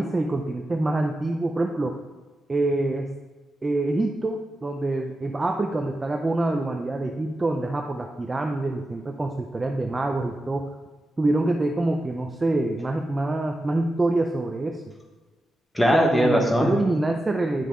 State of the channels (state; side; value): normal; both; correlation 0.90